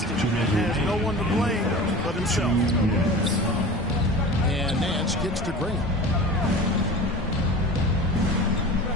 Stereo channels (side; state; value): both; normal; correlation 0.36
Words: it, and has no one to blame but himself. And Nance kicks to Green.